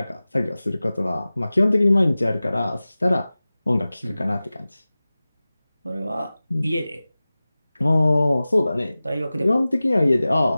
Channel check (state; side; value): inverted; both; correlation -0.97